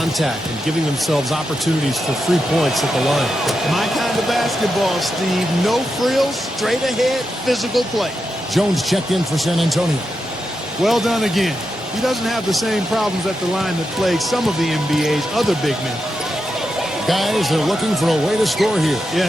and giving themselves opportunities for free points at the line? My kind of basketball, Steve. No frills, straight ahead, physical play. Jones checked in for San Antonio. Well done again. He doesn't have the same problems at the line that plague some of the NBA's other big men. Guys, they're looking for a way to score here.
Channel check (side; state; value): both; normal; correlation 0.87